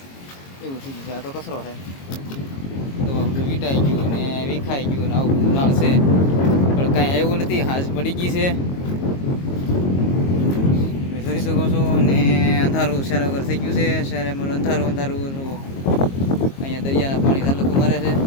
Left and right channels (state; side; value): late; right; 22 ms